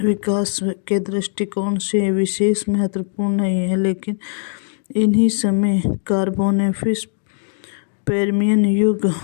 विकास के दृष्टिकोण से विशेष महत्वपूर्ण नहीं है, लेकिन इन्हीं समय कार्बोनेफिस पर्मियन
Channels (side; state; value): right; silent; digital silence